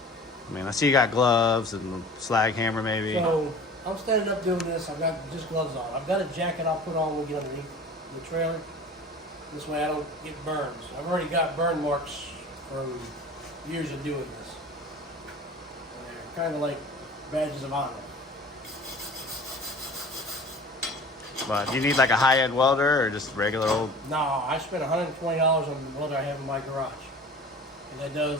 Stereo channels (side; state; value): both; normal; correlation 0.41